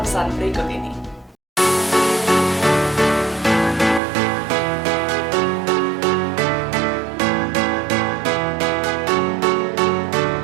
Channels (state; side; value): drops out; left; at 4.0 s